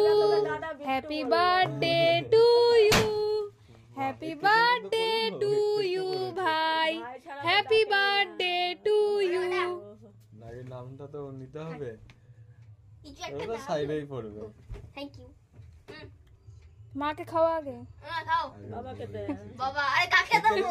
happy birthday to you, happy birthday to you ভাই, হ্যাপি বার্থডে টু ইউ। নাকি নামটা তো নিতে হবে, ওটা সাইডেই পড়বে। Thank you. মাকে খাওয়া আগে। খাও বাবাকে দে। বাবা আরে কাকে দাও?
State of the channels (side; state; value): both; identical; correlation 1.00